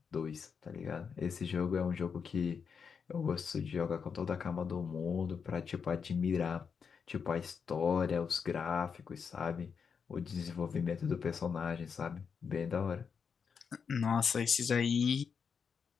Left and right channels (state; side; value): quieter; right; 6.3 dB